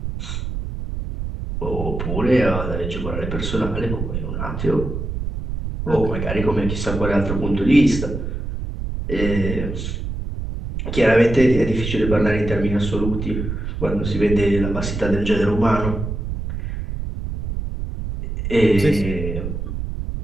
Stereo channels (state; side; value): noise; right; rumble, 5 dB below the sound